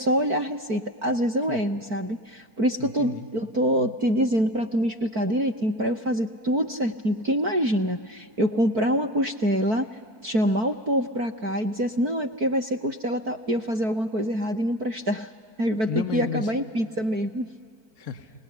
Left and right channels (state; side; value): late; left; 4.5 ms